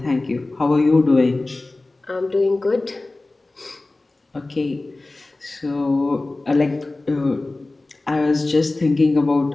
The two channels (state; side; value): quieter; right; 3.0 dB